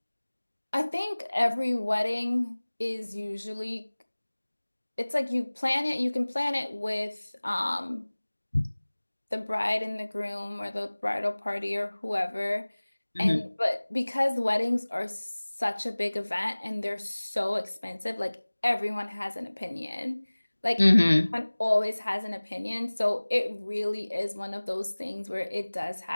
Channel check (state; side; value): inverted; both; correlation -1.00